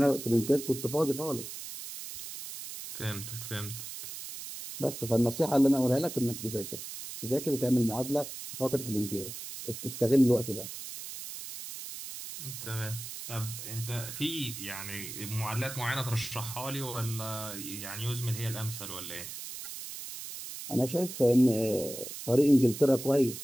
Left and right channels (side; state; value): right; noise; hiss, 9 dB below the sound